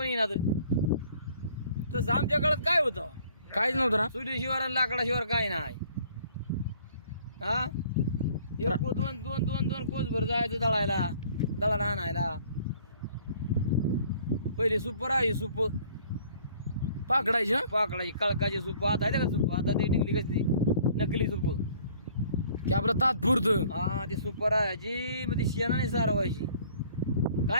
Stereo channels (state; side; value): inverted; both; correlation -0.56